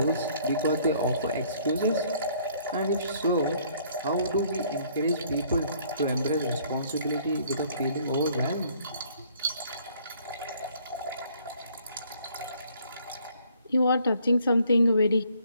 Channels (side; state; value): both; inverted; correlation -0.62